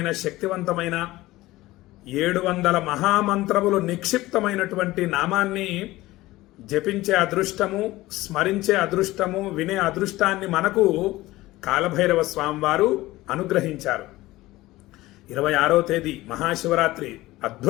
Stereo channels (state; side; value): quieter; right; 18.0 dB